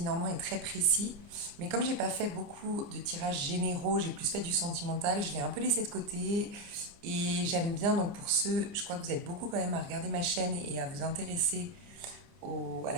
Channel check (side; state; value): left; late; 29 ms